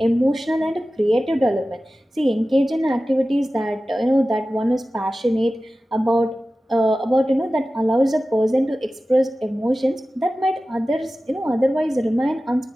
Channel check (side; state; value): both; normal; correlation 0.95